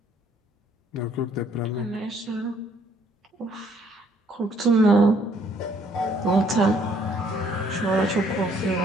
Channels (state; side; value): normal; both; correlation 0.64